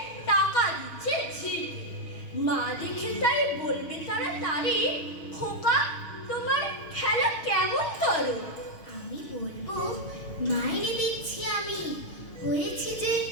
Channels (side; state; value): right; late; 6.4 ms